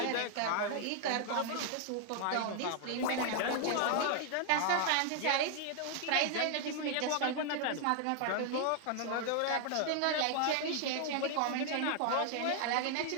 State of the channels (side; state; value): both; different; correlation 0.00